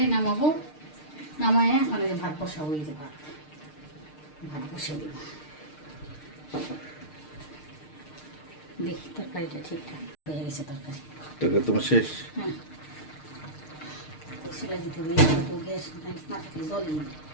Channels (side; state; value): right; late; 6.6 ms